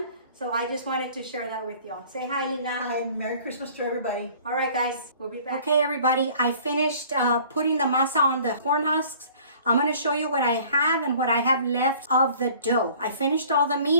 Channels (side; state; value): both; inverted; correlation -0.51